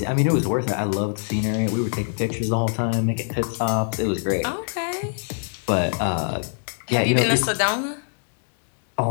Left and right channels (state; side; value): silent; right; 63 dB below the other